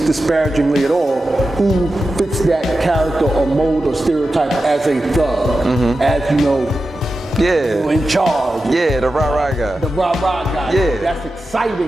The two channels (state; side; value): normal; both; correlation 0.92